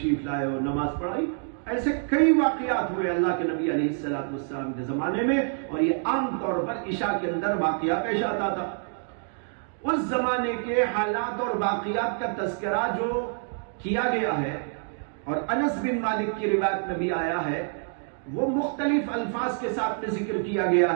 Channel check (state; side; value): silent; left; 60 dB below the other